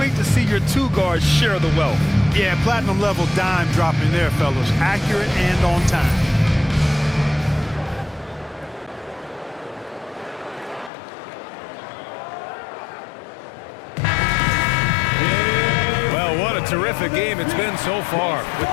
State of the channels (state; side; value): drops out; right; at 10.9 s